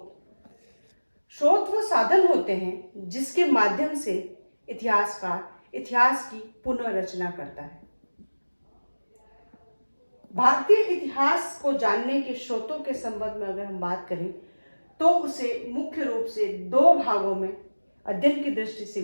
स्रोत वो साधन होते हैं जिसके माध्यम से इतिहासकार इतिहास की पुनर्रचना करता है। भारतीय इतिहास को जानने के स्रोतों के संबंध में अगर हम बात करें तो उसे मुख्य रूप से दो भागों में अध्ययन की दृष्टि से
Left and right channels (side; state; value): both; inverted; correlation -1.00